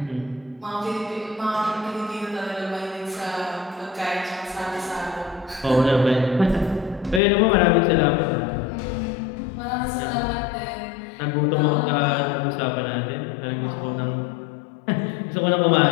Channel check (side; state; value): right; drops out; at 7.2 s